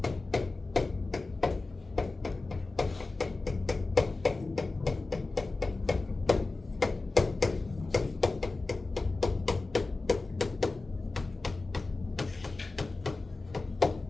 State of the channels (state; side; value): quieter; right; 3.5 dB